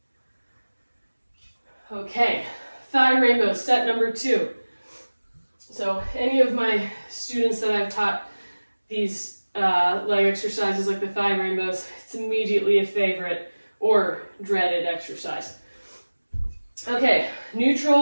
Okay, thigh rainbow, set number 2. So any of my students that I've taught these leg exercises like the thigh rainbows, it's immediately a favorite or dreaded exercise. Okay,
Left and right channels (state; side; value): inverted; both; correlation -1.00